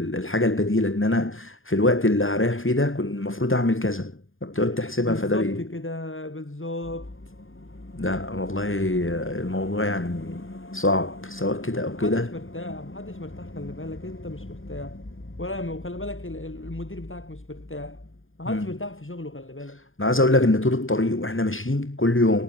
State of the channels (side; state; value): right; late; 0.59 ms